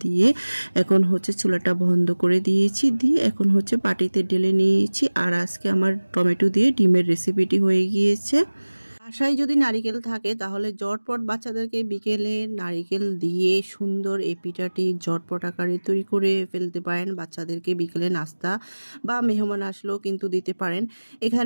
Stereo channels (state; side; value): inverted; both; correlation -1.00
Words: দিয়ে এখন চুলাটা বন্ধ করে দিয়েছি। দিয়ে এখন বাটিতে ঢেলে নিয়েছি। আর আজকে আমার টমেটো দিয়ে ডিমের রেসিপিটি হয়ে গিয়েছে। বাসায় যদি নারিকেল থাকে তাহলে ঝটপট বাচ্চাদেরকে বিকেলে নারিকেল দিয়ে সুন্দর এই পিঠাটি ঝটপট আকারে তৈরি করে ফেলতে পারেন। বাচ্চাদেরকে বিকেলে নাস্তা বা মেহমান আসলেও কিন্তু দিতে পারেন।